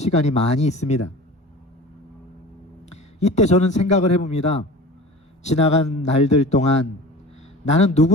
많이 있습니다. 이때 저는 생각을 해봅니다. 지나간 날들 동안 나는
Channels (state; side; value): normal; both; correlation 0.38